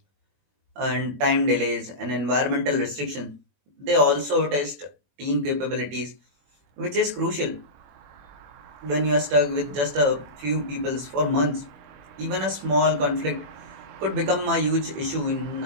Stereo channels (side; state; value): left; late; 21 ms